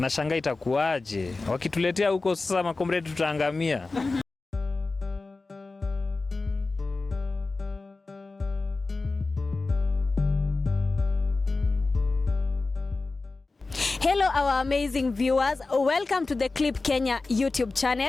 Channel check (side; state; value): right; quieter; 3.6 dB